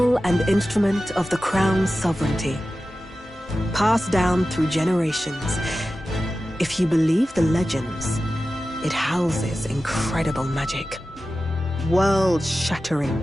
and instrument of the crown's sovereignty. Passed down through generations. If you believe the legends, it houses incredible magic.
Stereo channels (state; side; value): normal; both; correlation 0.94